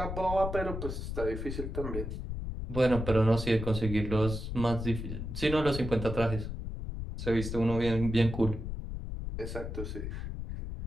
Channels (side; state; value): left; noise; rumble, 6 dB below the sound